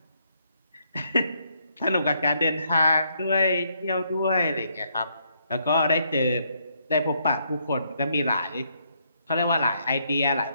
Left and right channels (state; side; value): inverted; both; correlation -0.73